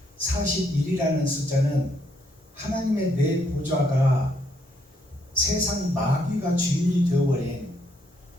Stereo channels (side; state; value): both; normal; correlation 0.73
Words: 41이라는 숫자는 하나님의 내 보좌가 세상 마귀가 주인이 되어버린